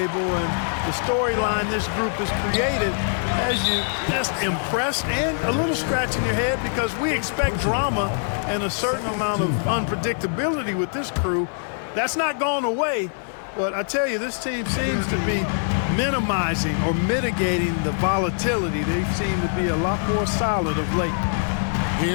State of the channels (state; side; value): silent; right; digital silence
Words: and the storyline this group has created has you just impressed and a little scratching your head, because we expect drama and a certain amount of unpredictability with this crew. That's not gone away, but I tell you, this team seems to be minimizing or mitigating the volatility. They seem to be a lot more solid of late.